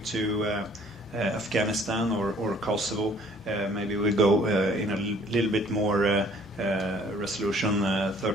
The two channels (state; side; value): normal; both; correlation 0.57